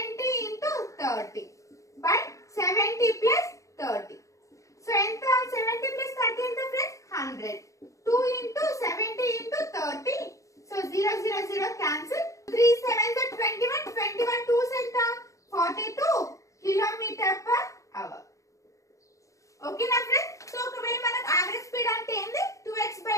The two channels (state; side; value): late; right; 0.15 ms